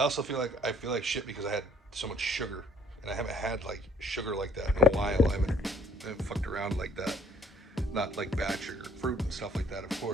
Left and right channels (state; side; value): normal; both; correlation 0.60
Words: also feel like shit because I had so much sugar, and I haven't had like sugar like that in a while. I haven't fucked around like that. Not like bad sugar, fruit and stuff like that, of